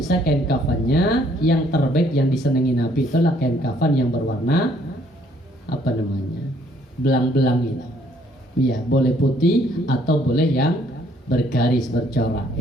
kain kafannya yang terbaik yang disenangi Nabi itulah kain kafan yang berwarna apa namanya? Belang-belang itu. Iya, boleh putih atau boleh yang bergaris bercorak,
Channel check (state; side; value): normal; both; correlation 0.65